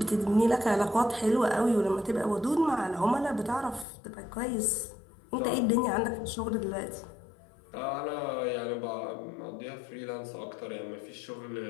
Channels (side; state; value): right; drops out; at 3.9 s